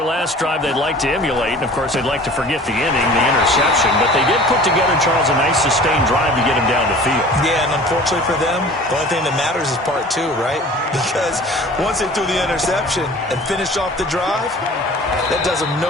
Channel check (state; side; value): normal; both; correlation 0.44